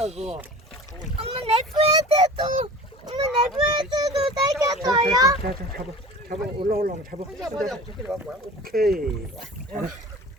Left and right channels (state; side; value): normal; both; correlation 0.39